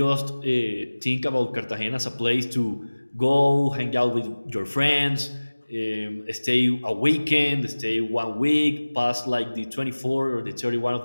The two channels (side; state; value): both; inverted; correlation -1.00